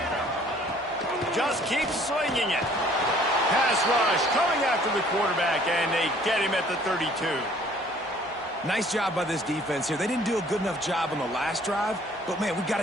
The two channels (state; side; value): normal; both; correlation 0.56